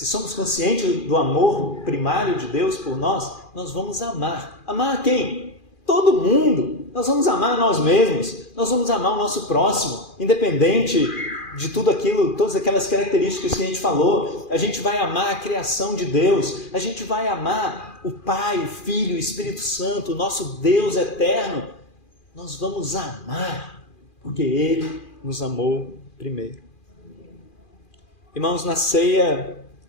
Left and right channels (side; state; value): right; late; 2.4 ms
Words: somos conscientes do amor primário de Deus por nós, nós vamos amar. Amar quem? Todo mundo. Nós vamos amar nós mesmos, nós vamos amar o nosso próximo, independente de tudo aquilo, todas aquelas características que a gente falou. A gente vai amar a criação de Deus, a gente vai amar o Pai, o Filho, o Espírito Santo, o nosso Deus eterno. Nós vamos amar, porque Ele nos amou primeiro. Irmãos, na ceia,